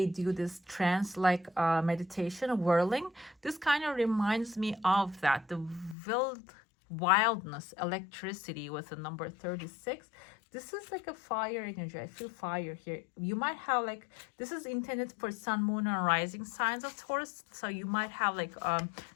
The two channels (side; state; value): right; drops out; at 6.0 s